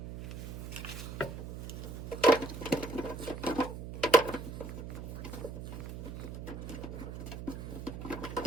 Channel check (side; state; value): right; noise; hum, 8 dB below the sound